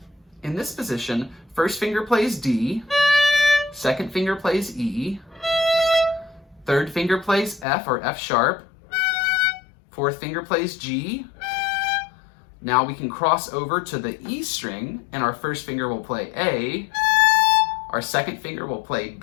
In this position, first finger plays D, second finger plays E, third finger plays F or F sharp, fourth finger plays G. Now we can cross over to the E string, and our first finger will play A, our second finger will play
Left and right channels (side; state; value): right; drops out; at 7.7 s